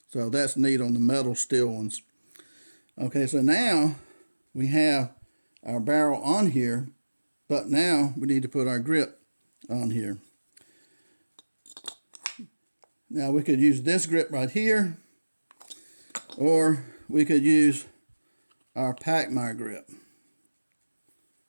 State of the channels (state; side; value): inverted; both; correlation -1.00